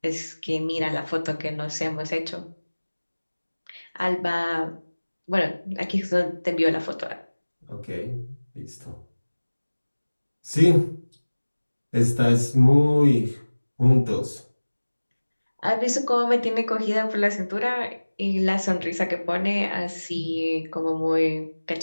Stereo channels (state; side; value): inverted; both; correlation -1.00